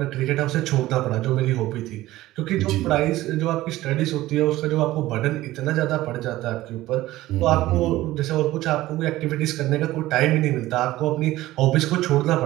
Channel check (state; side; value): quieter; left; 16.5 dB